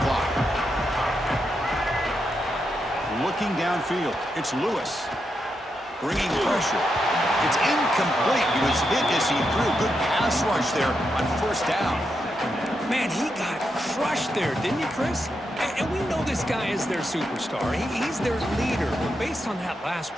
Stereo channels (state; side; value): normal; both; correlation 0.84